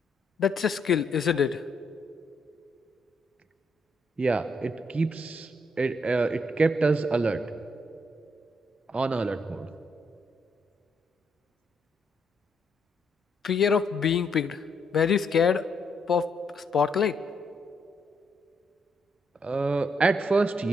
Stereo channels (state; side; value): normal; both; correlation 0.75